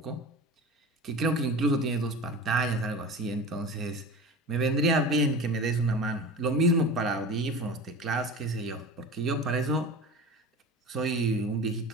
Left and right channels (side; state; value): both; normal; correlation 0.33